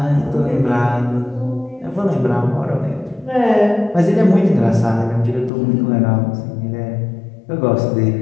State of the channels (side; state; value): right; drops out; at 5.5 s